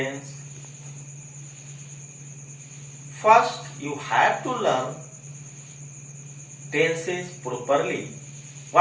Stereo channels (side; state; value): both; identical; correlation 1.00